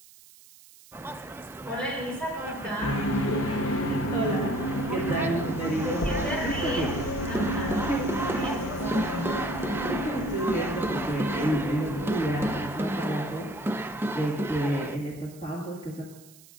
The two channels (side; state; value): right; noise; hiss, 23 dB below the sound